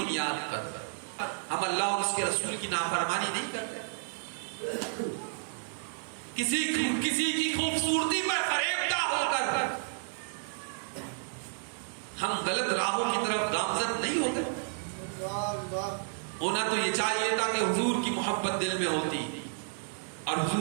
پر ہم اللہ اور اس کے رسول کی نافرمانی نہیں کرتے. کسی کی خوبصورتی پر فریبدہ ہو کر ہم غلط راہوں کی طرف گامزن نہیں ہوتے. ہونا تو یہ چاہیے تھا کہ حضور کی محبت دل میں ہوتی اور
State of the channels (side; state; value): left; silent; digital silence